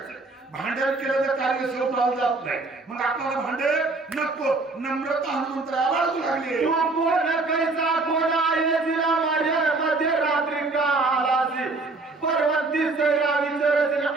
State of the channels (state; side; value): quieter; left; 3.5 dB